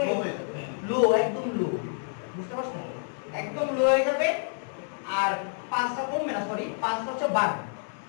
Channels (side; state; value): right; silent; digital silence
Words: লো, একদম লো, বুঝতে পারছেন? একদম লো হয়ে যাবে আর পালসটা কমবে না, সরি পালসটা হচ্ছে বাড়বে,